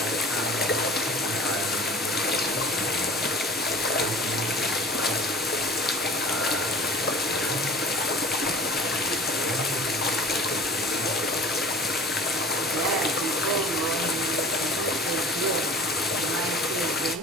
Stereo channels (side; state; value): both; normal; correlation 0.43